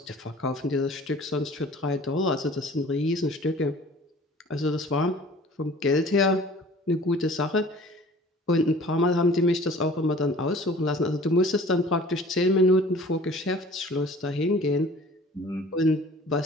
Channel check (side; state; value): both; normal; correlation 0.47